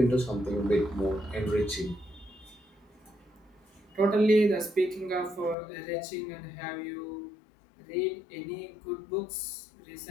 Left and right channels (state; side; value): drops out; right; at 5.6 s